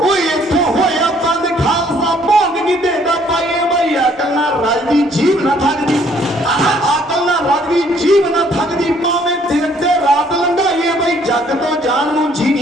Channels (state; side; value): normal; both; correlation 0.63